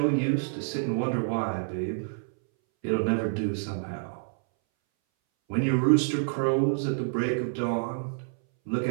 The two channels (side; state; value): left; silent; 59 dB below the other